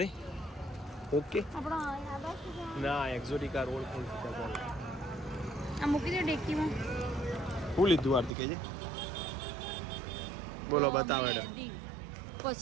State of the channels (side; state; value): left; drops out; at 8.3 s